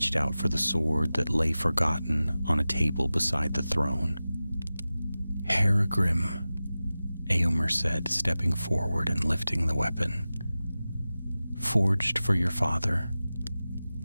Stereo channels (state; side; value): inverted; both; correlation -0.96